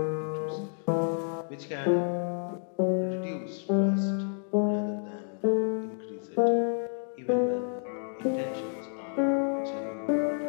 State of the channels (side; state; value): right; silent; 58 dB below the other